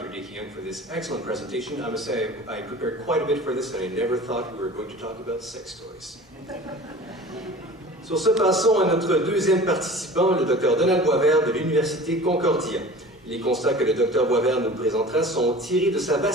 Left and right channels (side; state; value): both; normal; correlation 0.40